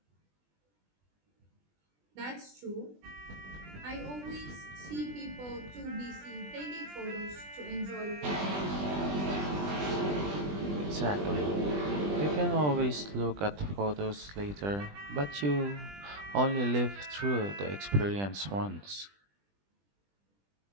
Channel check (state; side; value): late; left; 20 ms